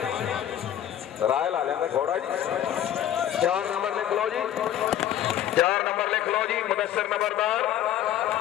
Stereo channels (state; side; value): quieter; right; 11.3 dB